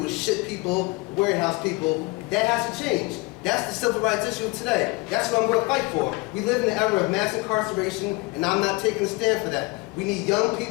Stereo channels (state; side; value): quieter; right; 25.2 dB